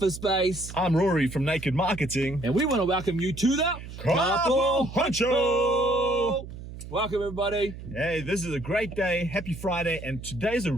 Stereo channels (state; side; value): noise; right; hum, 12 dB below the sound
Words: Space. I'm Rory from Naked Marketing. And we want to welcome you to the Carpool Honcho! Welcome everybody. Hey, this is a great day. Happy Friday, and today's a